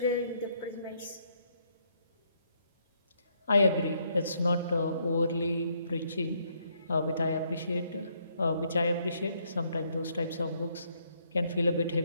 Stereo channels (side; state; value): both; inverted; correlation -0.72